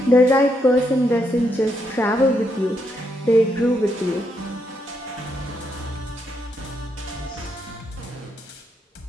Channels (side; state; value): both; normal; correlation 0.78